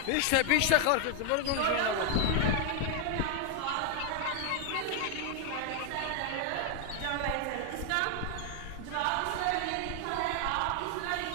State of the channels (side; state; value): both; different; correlation 0.00